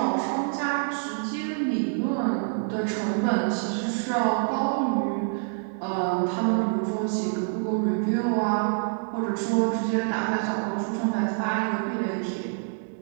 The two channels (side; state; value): left; silent; digital silence